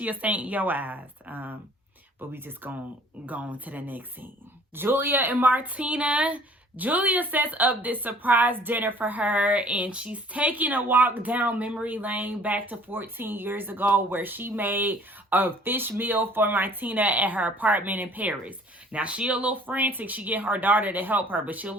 a saint in your eyes. But we just gonna go on to the next scene. Julia and Martina. Julia sets up this surprise dinner for her, and she's taking a walk down memory lane back to 14 years ago, where she made a fish meal for Martina at her apartment in Paris. Now, she a little frantic. She get her daughter to help her, but she a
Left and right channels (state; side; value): normal; both; correlation 0.53